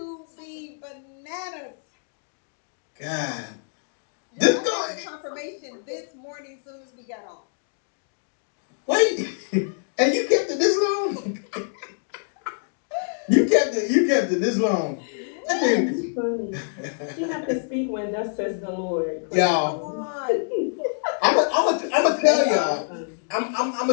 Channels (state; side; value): silent; right; digital silence